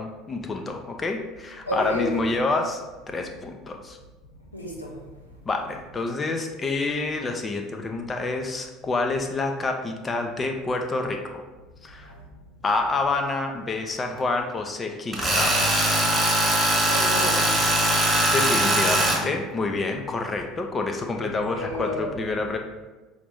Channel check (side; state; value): both; normal; correlation 0.60